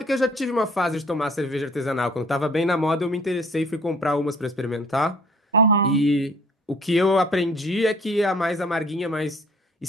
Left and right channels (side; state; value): both; normal; correlation 0.54